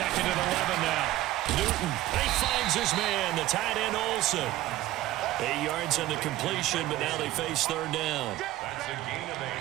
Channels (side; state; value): left; quieter; 15.6 dB